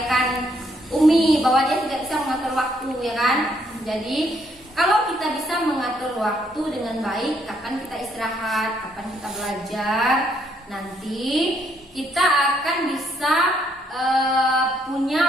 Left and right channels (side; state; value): both; normal; correlation 0.71